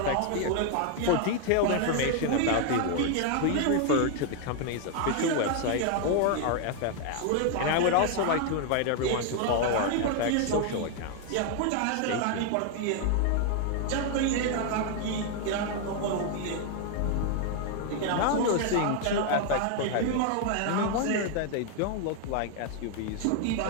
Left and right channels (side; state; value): both; different; correlation 0.00